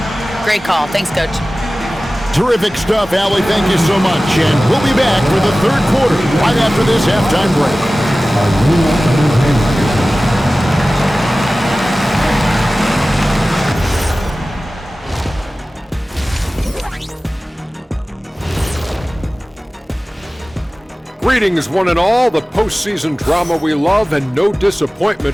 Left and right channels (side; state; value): both; normal; correlation 0.97